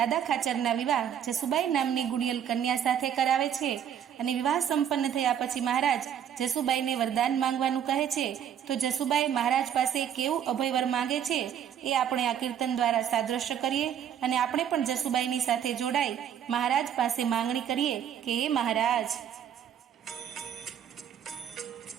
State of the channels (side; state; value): left; quieter; 9.3 dB